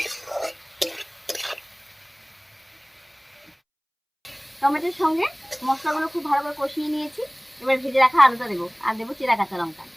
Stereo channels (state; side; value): identical; both; correlation 1.00